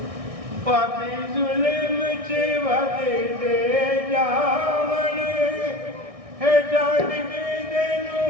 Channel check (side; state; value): left; late; 1.6 ms